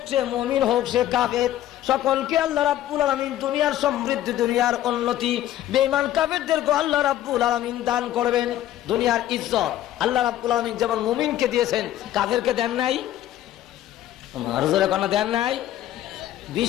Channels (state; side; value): quieter; right; 13.0 dB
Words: সে মুমিন, হোক সে কাফের, সকলকে আল্লাহ রাব্বুল আলামিন দুনিয়ার সমৃদ্ধি, দুনিয়ার উন্নতি, বেঈমান কাফেরদেরকে আল্লাহ রাব্বুল আলামিন দান করবেন দুনিয়ার ইজ্জত। আল্লাহ রাব্বুল আলামিন যেমন মুমিনকে দিয়েছেন, কাফেরকে দেন নাই? আর জোরে কোনো দেন নাই?